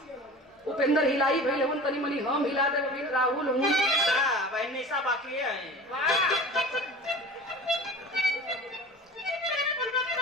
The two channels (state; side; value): normal; both; correlation 0.38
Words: उपेंद्र हिलाई भइल हवन तनी मनी हम हिला दे अभी राहुल हूं भाई निशा बाकी है